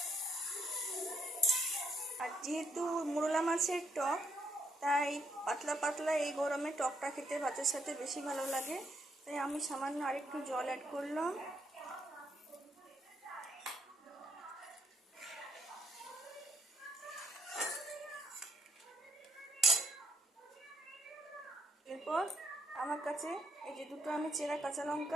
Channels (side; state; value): both; normal; correlation 0.73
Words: আর যেহেতু মোরলা মাছের টক, তাই পাতলা পাতলা এই গরমে টকটা খেতে ভাতের সাথে বেশি ভালো লাগে, তাই আমি সামান্য আরেকটু জল অ্যাড করলাম। এরপর আমার কাছে এই যে দুটো আমি চেরা কাঁচা